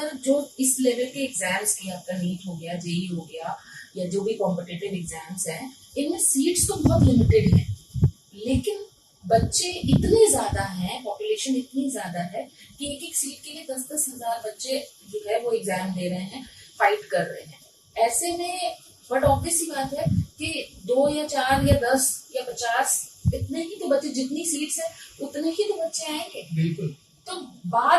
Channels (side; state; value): both; identical; correlation 1.00